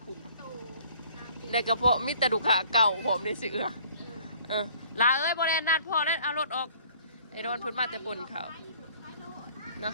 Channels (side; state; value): both; inverted; correlation -0.55